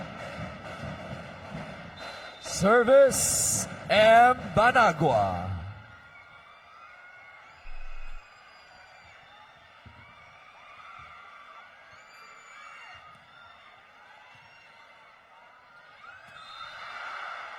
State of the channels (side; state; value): both; identical; correlation 1.00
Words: Service, M. Banagua.